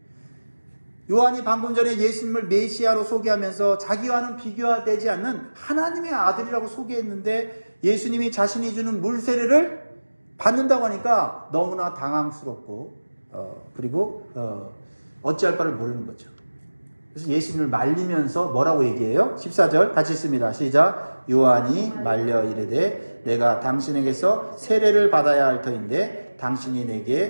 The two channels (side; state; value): both; inverted; correlation -1.00